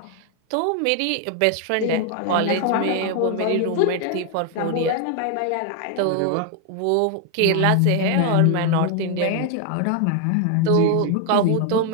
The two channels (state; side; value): different; both; correlation 0.00